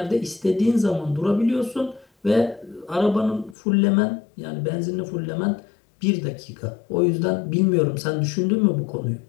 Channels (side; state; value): right; drops out; at 3.6 s